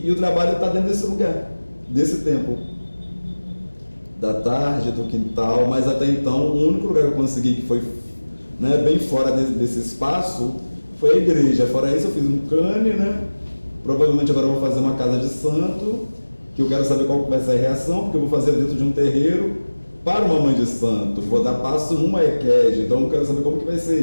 o trabalho está dentro desse lugar, desse tempo, da tarde, do quintal, mas até então o único lugar que eu consegui que foi, né, bem fora desse espaço foi a igreja. Fora isso eu fiz um cane, né? Provavelmente agora eu vou fazer uma casa de santo, que eu quero saber qual vai ser a reação, porque eu vou fazer dentro de um terreiro para uma mãe de santo, vou dar passo numa EQUED, então eu quero saber como que vai ser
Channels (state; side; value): inverted; both; correlation -1.00